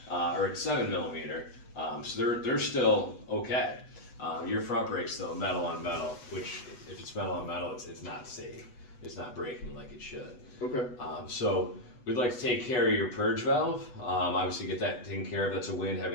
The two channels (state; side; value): late; right; 8.1 ms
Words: are at 7 millimeter. So they're still okay. Your front brakes, though, metal on metal, which if it's metal on metal, it's not safe. It's not braking like it should. Okay. So we'd like to take care of your purge valve. Obviously, get that taken care of. That's a win,